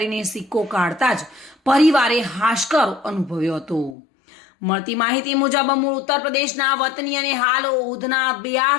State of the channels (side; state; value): right; drops out; at 4.0 s